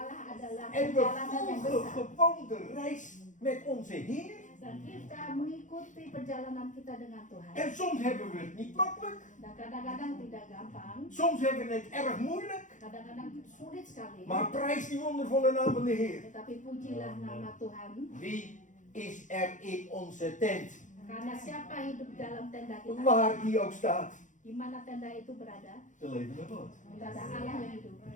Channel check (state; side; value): late; right; 0.36 ms